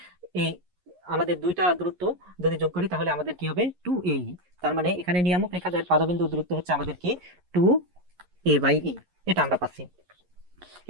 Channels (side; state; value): left; late; 11 ms